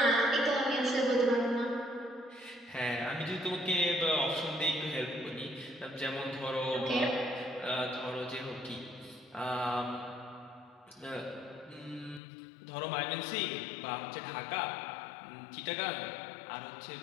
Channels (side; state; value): right; drops out; at 12.2 s